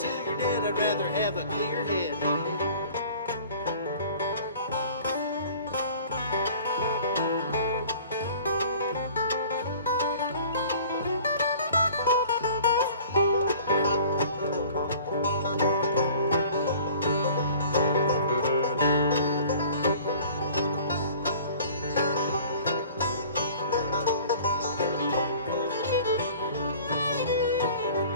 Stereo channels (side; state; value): both; inverted; correlation -0.48